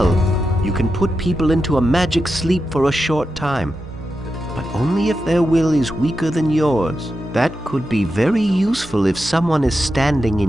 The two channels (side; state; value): both; normal; correlation 0.89